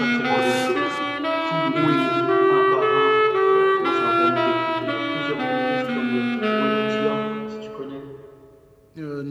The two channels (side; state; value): both; identical; correlation 1.00